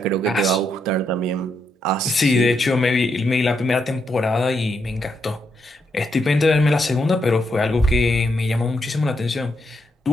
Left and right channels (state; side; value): normal; both; correlation 0.79